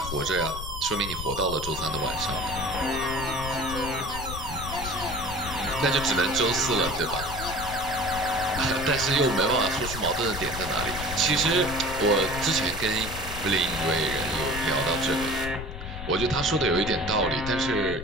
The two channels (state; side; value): noise; left; rumble, 9 dB below the sound